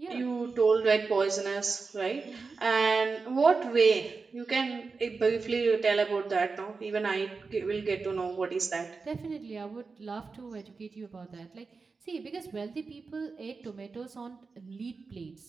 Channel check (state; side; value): quieter; left; 4.5 dB